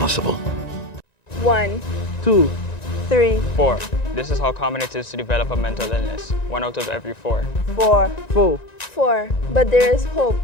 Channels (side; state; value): right; late; 1.9 ms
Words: 1, 2, 3, 4. This is how common it is to develop a mental illness, 1 out of every 4. 4. But there is hope.